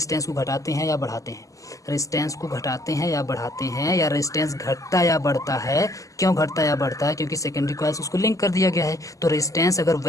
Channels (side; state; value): right; late; 0.16 ms